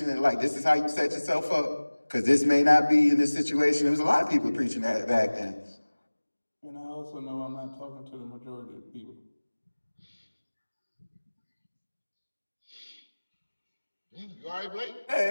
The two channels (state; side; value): inverted; both; correlation -1.00